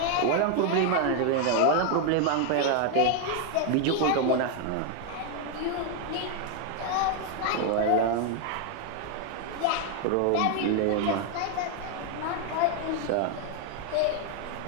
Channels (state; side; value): different; both; correlation 0.00